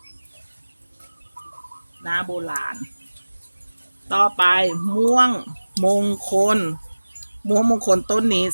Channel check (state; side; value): inverted; both; correlation -1.00